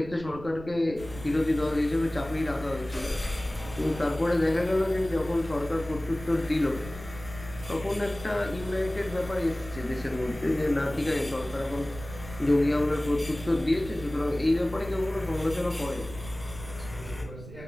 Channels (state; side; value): noise; right; rumble, 14 dB below the sound